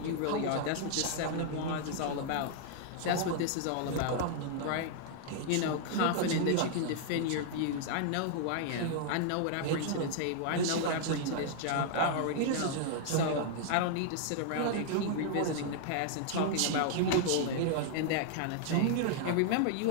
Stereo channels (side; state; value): both; different; correlation -0.01